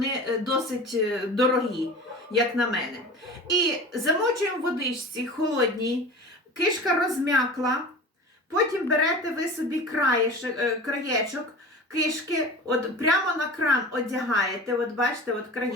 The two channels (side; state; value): both; normal; correlation 0.35